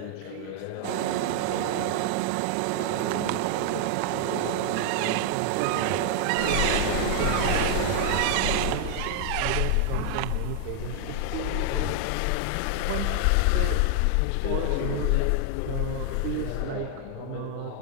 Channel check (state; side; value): different; both; correlation 0.00